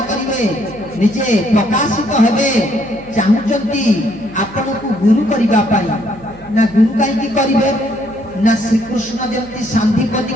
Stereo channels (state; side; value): noise; right; hum, 22 dB below the sound